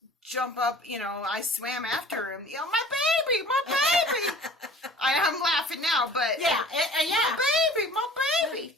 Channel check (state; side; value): normal; both; correlation 0.47